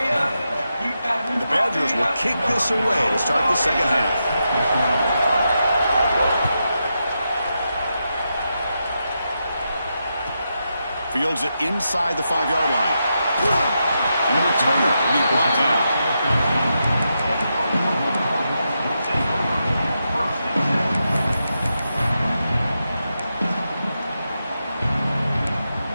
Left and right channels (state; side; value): inverted; both; correlation -0.86